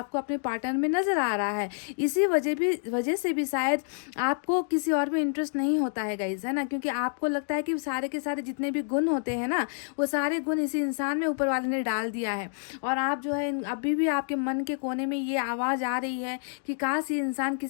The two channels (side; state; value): right; silent; digital silence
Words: अपने पार्टनर में नज़र आ रहा है। इसी वजह से भी शायद आपको किसी और में इंटरेस्ट नहीं होता है गाइज, है ना, क्योंकि आपको लगता है कि सारे के सारे जितने भी गुण होते हैं ना, वो सारे गुण इसी इंसान में ऊपर वाले ने डाल दिया है। और आप जो है अभी भी आपके मन के कोने में ये आवाज़ आ रही है कि काश ये इंसान